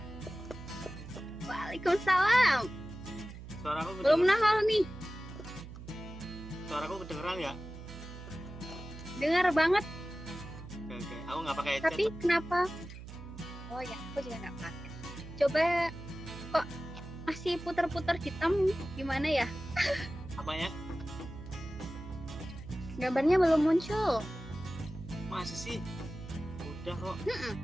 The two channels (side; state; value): right; noise; hum, 12 dB below the sound